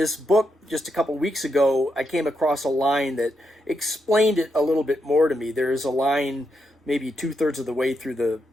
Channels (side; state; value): both; normal; correlation 0.83